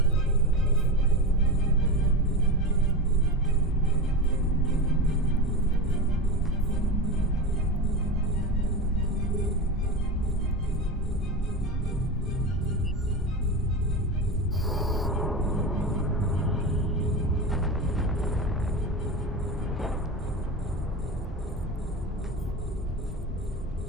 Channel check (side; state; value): both; normal; correlation 0.22